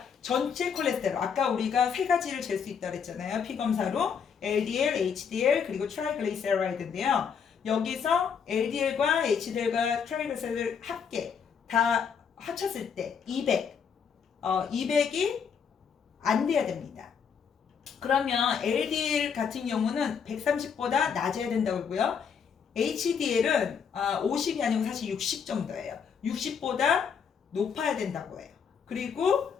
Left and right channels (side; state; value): right; quieter; 6.8 dB